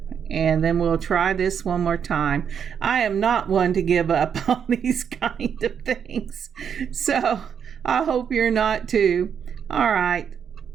And then we'll try this one more time. I am not one to give up on these kind of things, so I hope you're not too. All right.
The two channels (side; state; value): left; quieter; 7.7 dB